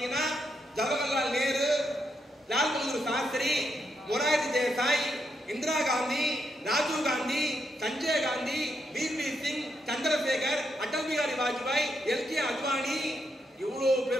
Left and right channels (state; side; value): normal; both; correlation 0.81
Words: ஜவஹர்லால் நேரு, லால் பகதூர் சாஸ்திரி, மொரார்ஜி தேசாய், இந்திரா காந்தி, ராஜீவ் காந்தி, சஞ்சய் காந்தி, வி.பி. சிங், சந்திரசேகர், அடல் பிஹாரி வாஜ்பாய், எல்.கே. அத்வானி, இவ்வளவு